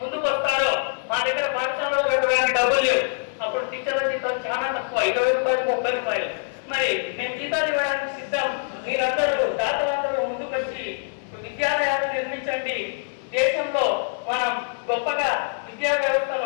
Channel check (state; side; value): silent; right; 56 dB below the other